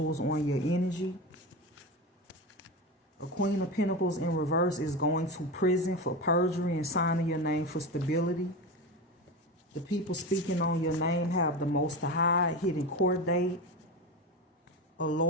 on your energy. A Queen of Pentacles in reverse is going to prison for perjury and signing your name for stability. The people speaking on your name have the most to hide, hidden court date. A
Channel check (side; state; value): both; normal; correlation 0.22